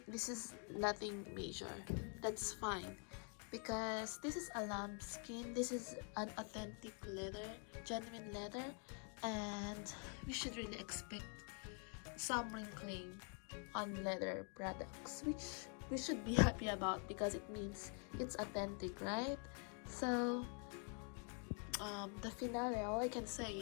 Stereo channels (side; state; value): right; quieter; 39.6 dB